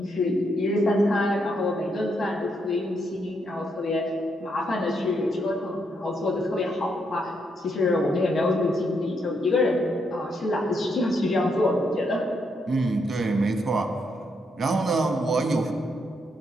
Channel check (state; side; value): normal; both; correlation 0.78